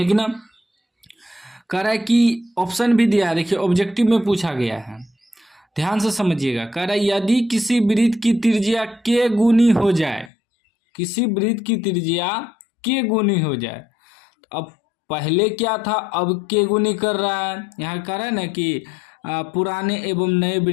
ना। कह रहा है कि ऑप्शन भी दिया है, देखिए ऑब्जेक्टिव में पूछा गया है, ध्यान से समझिएगा। कह रहा है यदि किसी वृत्त की त्रिज्या के गुनी हो जाए, किसी वृत्त की त्रिज्या के गुनी हो जाए, तो अब पहले क्या था, अब के गुनी कर रहा है। यहाँ कह रहा है ना कि पुराने एवं नए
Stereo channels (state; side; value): drops out; right; at 10.3 s